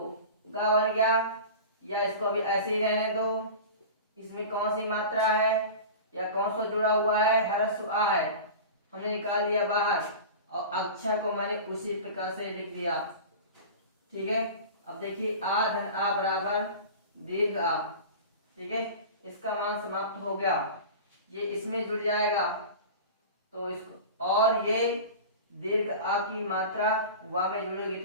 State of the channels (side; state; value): both; inverted; correlation -0.34